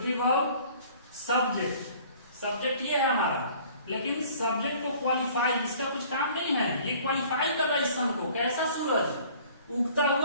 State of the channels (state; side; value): inverted; both; correlation -0.52